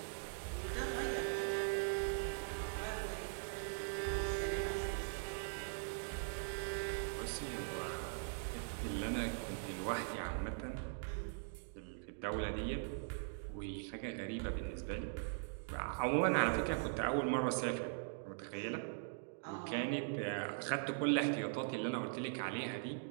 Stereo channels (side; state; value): left; silent; digital silence